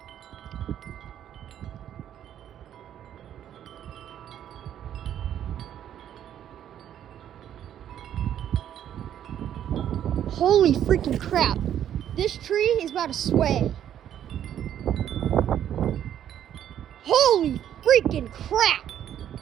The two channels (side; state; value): left; quieter; 10.4 dB